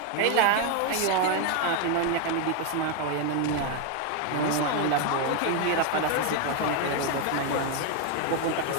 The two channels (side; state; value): both; different; correlation 0.01